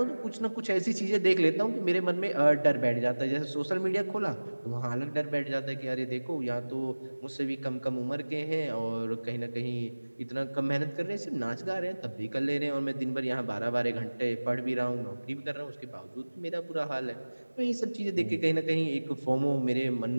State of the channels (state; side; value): inverted; both; correlation -1.00